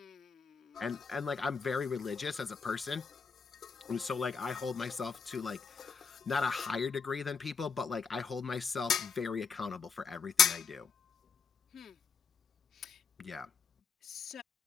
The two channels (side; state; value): right; quieter; 5.9 dB